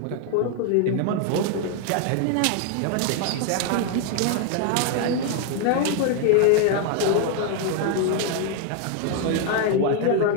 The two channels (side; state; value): both; different; correlation 0.00